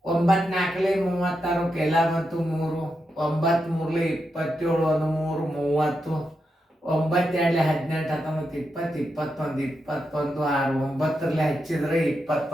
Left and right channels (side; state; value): both; normal; correlation 0.86